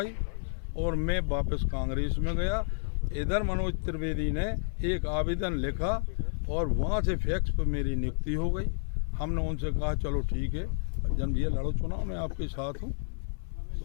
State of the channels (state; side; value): silent; right; 58 dB below the other